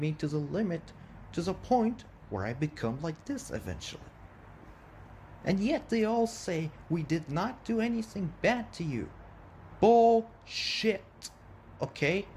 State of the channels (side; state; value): both; identical; correlation 1.00